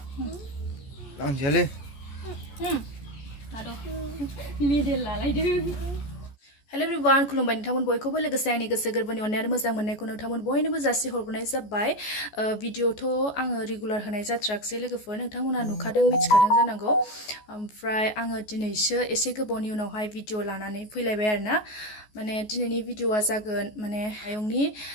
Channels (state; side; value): late; right; 14 ms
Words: लांजायालै मेडेल लालायदों हेलो एवरीवन खुलुमबाय नोंथांमोन बयखौबो लोगोसे आंनि गोसो गोरबोनि अननाय आरो मोजां मोननायखौ नोंथांमोन बयनोबो जासि हरनाय जाबाय भिडिअथ' आङो रेगुलार होनाय जाथ्राखसै लोगोफोर नोंथांमोना नुखादों मिथिखादों जानांगौ ओमफ्राय आङो दिनैसो एसे गोबावनि उनावहाय भिडिअ लानानै फैलायबाय आरोना माने दिनैनि भिडिअआ जागोन माने आयंनि